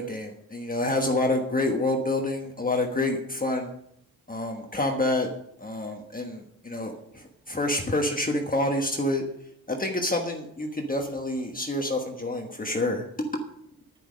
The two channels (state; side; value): normal; both; correlation 0.34